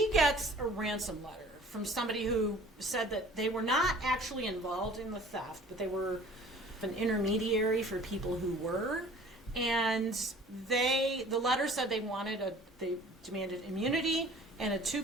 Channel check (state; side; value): normal; both; correlation 0.48